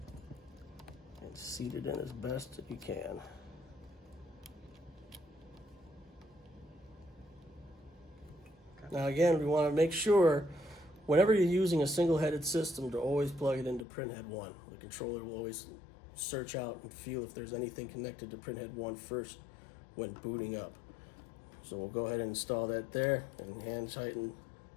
and seat it in as best you can. Now again, we want to make sure whenever you're using a single-headed system to always plug it into printhead 1. The controller will always search out and feel if there's anything connected to printhead 1 first when booting up. So we'll go ahead and install that there and hand tighten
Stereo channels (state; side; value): drops out; right; at 13.9 s